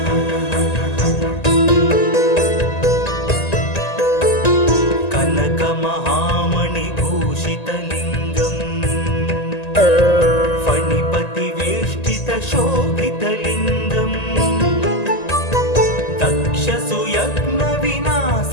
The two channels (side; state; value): right; late; 1.9 ms